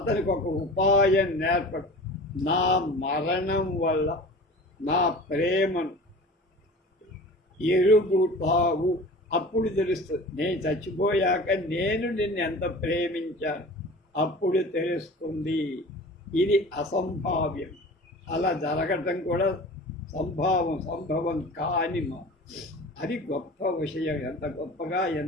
ఒక ఉపాయం నేర్పడు. నా మరణం వల్ల నా ప్రేమను ఎరుగుతావు, అప్పుడు తెలుస్తుంది. నేను చచ్చిపోయాక నేను నిన్ను ఎంత ప్రేమించాను అప్పుడు తెలుస్తుంది. ఇది అసంభావ్యం. అలా జరగటం కూడా సంభవం కాని అది గొప్ప విషయం. ఎంత గొప్పగా,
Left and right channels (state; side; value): normal; both; correlation 0.39